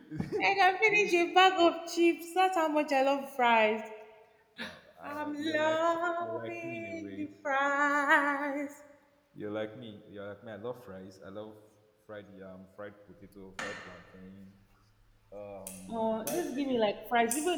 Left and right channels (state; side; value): identical; both; correlation 1.00